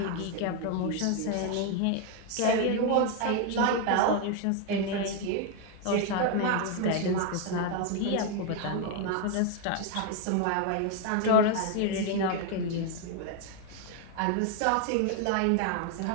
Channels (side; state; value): both; different; correlation 0.01